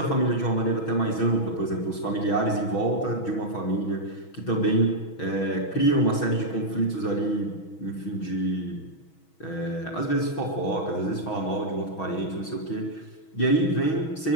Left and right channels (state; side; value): late; right; 6.2 ms